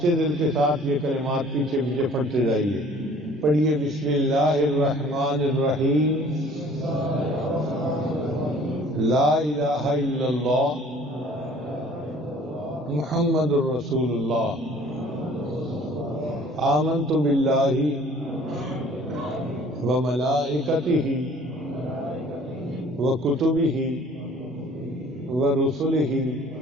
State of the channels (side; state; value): both; normal; correlation 0.52